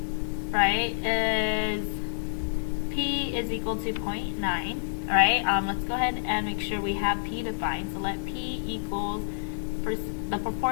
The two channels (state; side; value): silent; right; digital silence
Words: right, is P is equal to 0.9, right? Let's go ahead and make sure we have P defined. So let P equals the